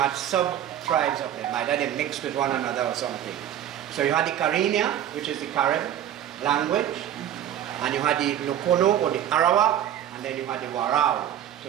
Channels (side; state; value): left; quieter; 10.9 dB